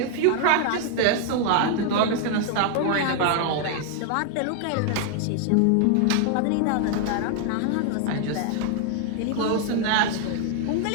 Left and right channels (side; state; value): both; different; correlation 0.00